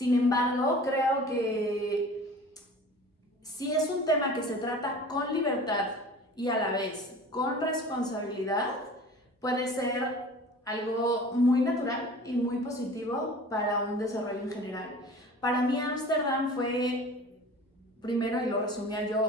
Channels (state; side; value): normal; both; correlation 0.42